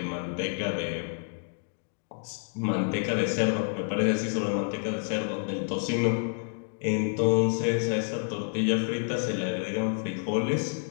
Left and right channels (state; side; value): silent; right; 59 dB below the other